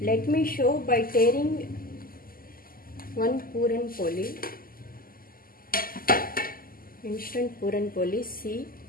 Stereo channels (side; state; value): right; late; 0.42 ms